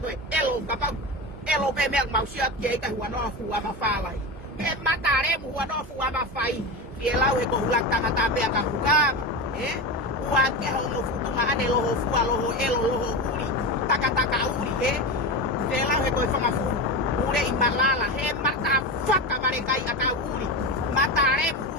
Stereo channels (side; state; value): both; normal; correlation 0.21